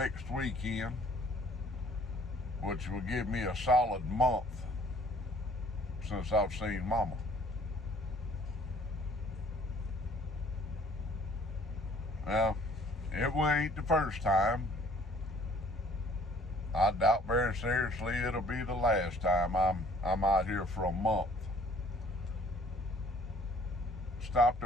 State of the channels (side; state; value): both; normal; correlation 0.56